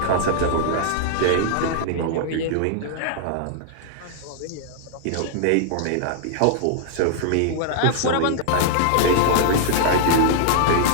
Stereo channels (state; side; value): different; both; correlation -0.01